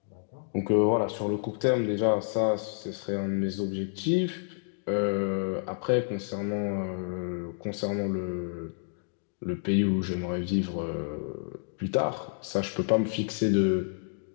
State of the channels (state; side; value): silent; right; digital silence